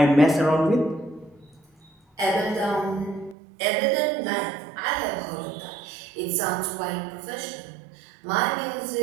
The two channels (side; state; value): left; drops out; at 3.4 s